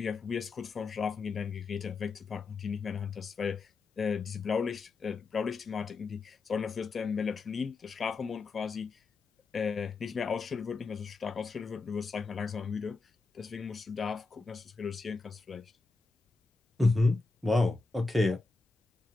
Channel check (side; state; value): right; quieter; 3.9 dB